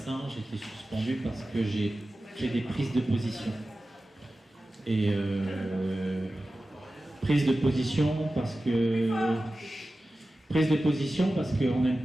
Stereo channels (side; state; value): both; normal; correlation 0.95